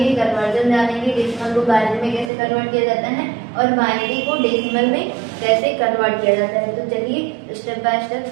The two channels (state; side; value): drops out; left; at 2.3 s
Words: कन्वर्जन जानेंगे, डेसिमल को बाइनरी में कैसे कन्वर्ट किया जाता है और बाइनरी को डेसिमल में कैसे कन्वर्ट किया जाता है। तो चलिए स्टेप बाय स्टेप